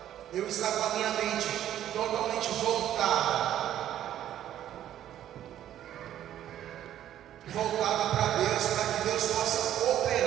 eu estar com a minha mente totalmente voltada para Deus, para que Deus possa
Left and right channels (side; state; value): left; quieter; 11.6 dB